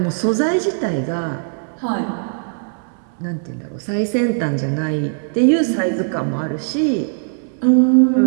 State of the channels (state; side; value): silent; left; 62 dB below the other